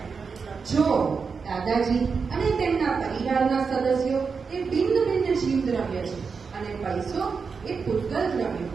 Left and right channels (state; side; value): quieter; left; 5.3 dB